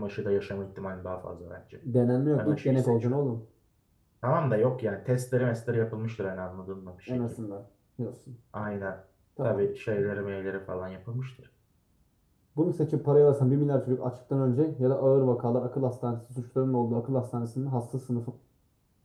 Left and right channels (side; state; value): both; identical; correlation 1.00